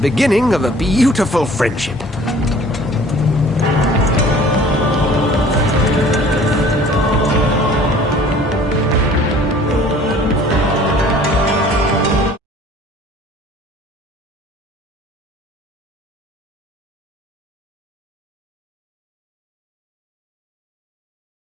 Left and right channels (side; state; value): both; normal; correlation 0.50